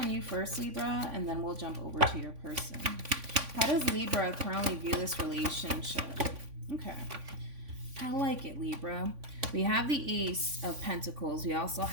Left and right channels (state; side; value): late; left; 3.5 ms